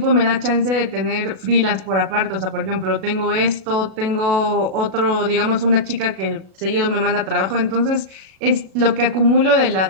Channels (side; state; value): left; late; 37 ms